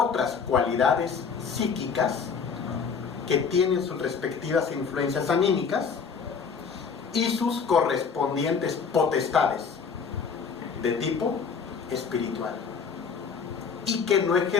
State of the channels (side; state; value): right; quieter; 5.9 dB